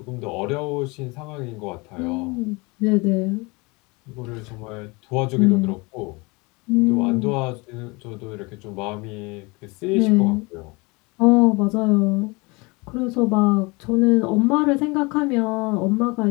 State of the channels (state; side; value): quieter; right; 26.4 dB